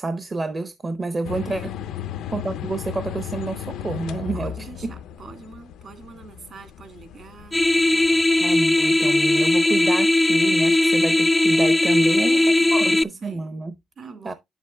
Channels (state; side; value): normal; both; correlation 0.96